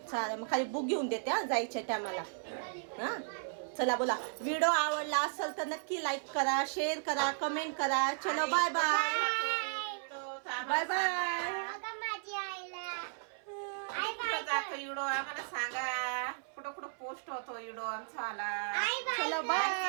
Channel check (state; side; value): silent; left; 54 dB below the other